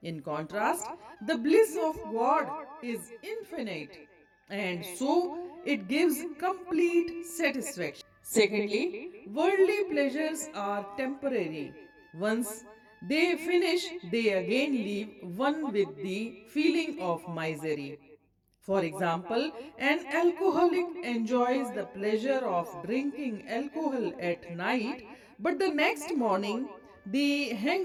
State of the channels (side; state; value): both; identical; correlation 1.00